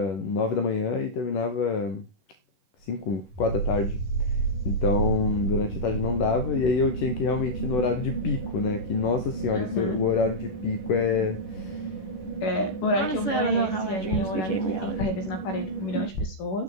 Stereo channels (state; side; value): late; right; 11 ms